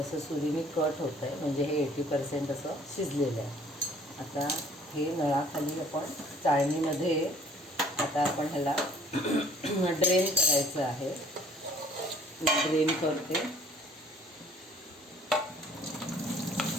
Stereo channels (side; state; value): both; normal; correlation 0.56